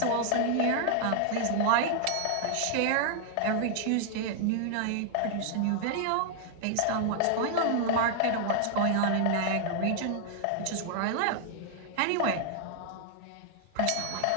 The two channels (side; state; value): both; different; correlation 0.00